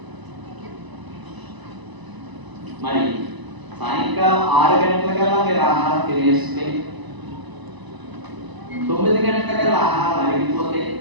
మరి సాయంకాలం 6 గంటలకల్లా మీరు ఆహారం తినేస్తే, 9 గంటలకల్లా ఆహారం అరిగిపోతే,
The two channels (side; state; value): left; late; 1.0 ms